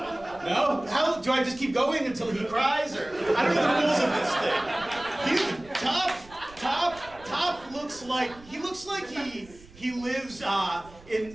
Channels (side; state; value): right; noise; rumble, 22 dB below the sound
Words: How do I just keep going until he cries, or I don't know the rules of this thing. Top looks like he lives